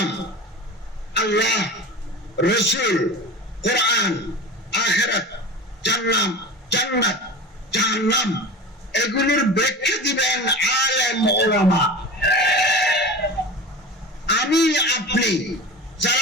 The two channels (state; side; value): normal; both; correlation 0.32